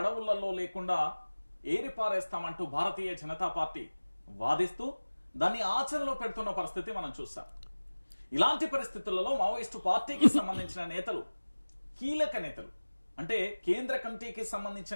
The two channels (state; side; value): inverted; both; correlation -1.00